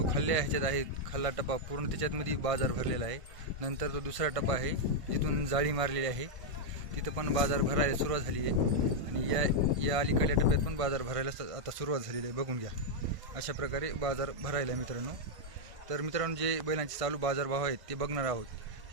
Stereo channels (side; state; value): left; late; 1.6 ms